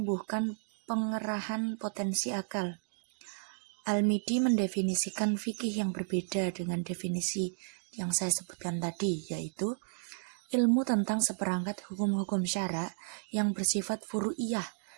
pengerahan potensi akal. Al-Midi mendefinisikan fikih yang berbeda dengan definisi yang saya sebutkan tadi, yaitu ilmu tentang seperangkat hukum-hukum syara yang bersifat furu'iyah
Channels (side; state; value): left; silent; digital silence